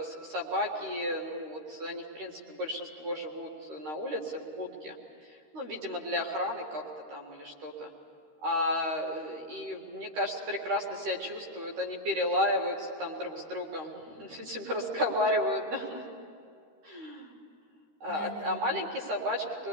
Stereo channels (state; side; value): late; left; 13 ms